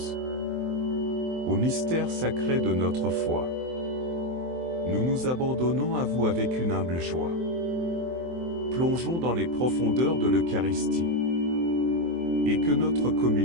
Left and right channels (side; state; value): left; late; 23 ms